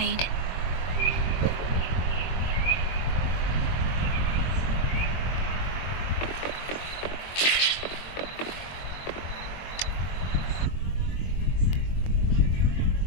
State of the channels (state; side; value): late; right; 22 ms